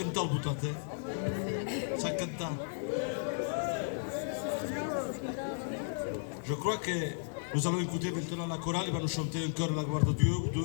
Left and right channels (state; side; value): silent; right; digital silence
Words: el botat, Sap cantar. Je crois que nous allons écouter maintenant la chorale, il va nous chanter un chœur la gloire de Dieu ou